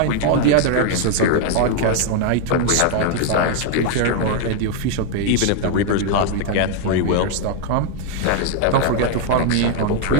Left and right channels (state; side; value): different; both; correlation 0.00